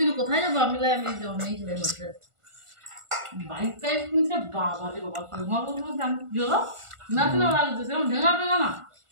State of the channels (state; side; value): late; left; 1.4 ms